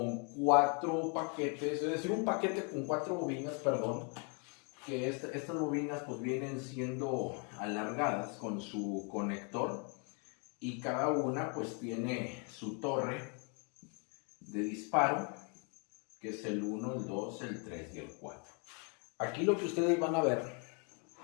4 paquetes, es decir, un paquete con 4 bobinas, perdón, que estas bobinas pues vienen siendo alargadas con su conector y cada una pues tiene su torre de disparo, que es el 1, el 2, el 3 y el 4. Aquí lo que ustedes van a ver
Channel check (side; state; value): right; quieter; 36.9 dB